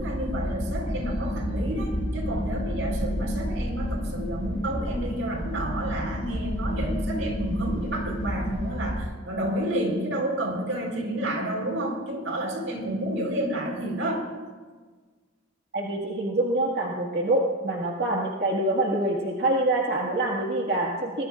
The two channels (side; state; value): both; normal; correlation 0.34